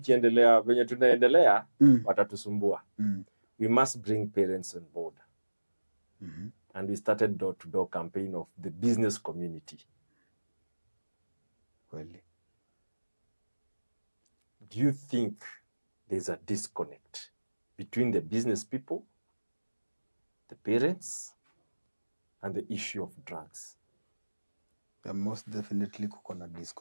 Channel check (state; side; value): inverted; both; correlation -1.00